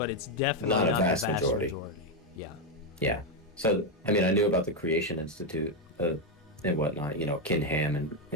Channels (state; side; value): normal; both; correlation 0.05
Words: it's definitely not the vast majority. Yeah. Yeah. So, I mean, I knew about the Creation Institute and whatnot, Ken Ham